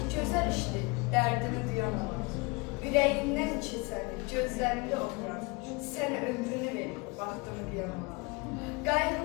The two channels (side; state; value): right; quieter; 27.5 dB